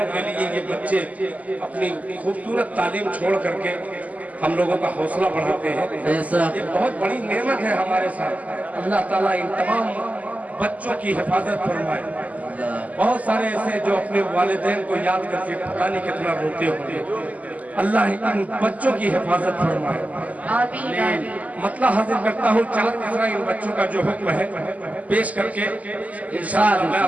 के लिए ये बच्चे अपनी खूबसूरत तालीम छोड़ करके हम लोगों का हौसला बढ़ाते हैं। ये बहुत बड़ी नेमत है हमारे साथ। अल्लाह ताला इन तमाम बच्चों की हिफाजत फरमाए। बहुत सारे ऐसे जो अपने वालिदैन को याद करके पता नहीं कितना रोते होंगे। अल्लाह इन बच्चों की हिफाजत फरमाए। आमीन। मतलब हाजिर करता हूँ चार तीसरा इन बच्चों का जो हुक्म है पेश करके इंशाअल्लाह मैं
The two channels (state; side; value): late; left; 0.074 ms